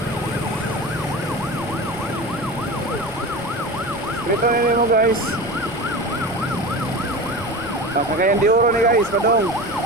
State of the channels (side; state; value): left; noise; rumble, 18 dB below the sound